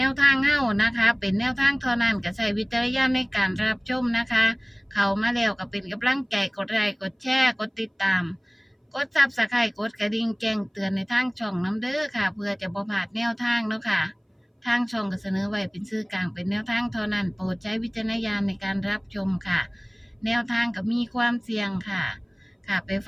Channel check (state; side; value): identical; both; correlation 1.00